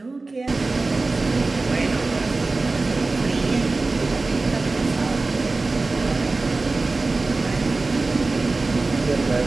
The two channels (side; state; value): left; quieter; 3.5 dB